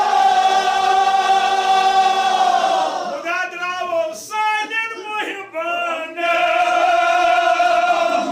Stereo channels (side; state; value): both; identical; correlation 1.00